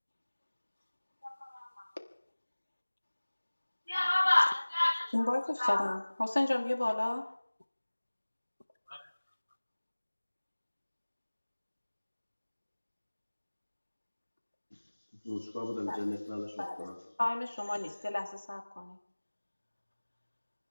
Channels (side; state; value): both; inverted; correlation -1.00